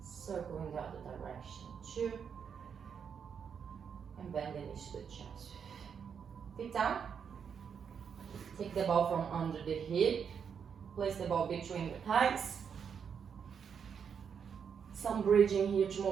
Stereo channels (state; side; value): quieter; left; 7.1 dB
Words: Circle in the other direction. 2. And bend the knees to the chest. Feet down. Take the ball from under the hip. Place the ball between the thighs. Some bridging here to